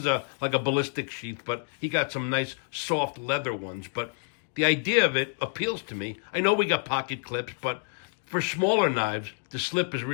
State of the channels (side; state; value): right; silent; 59 dB below the other